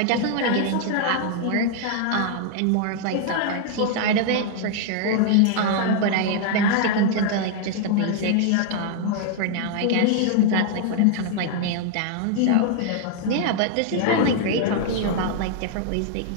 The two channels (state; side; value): different; both; correlation 0.00